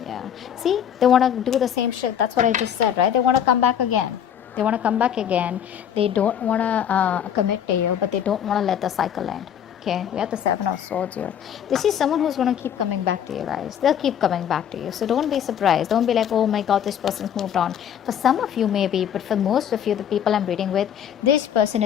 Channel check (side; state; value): right; quieter; 9.1 dB